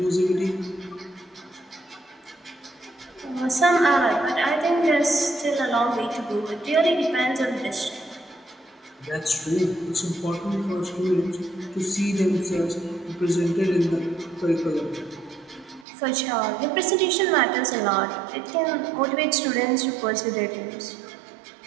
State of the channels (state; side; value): drops out; left; at 15.9 s